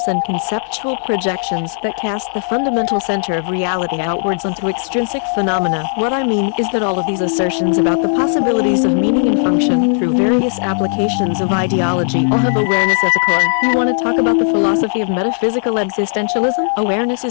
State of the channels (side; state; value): right; silent; 55 dB below the other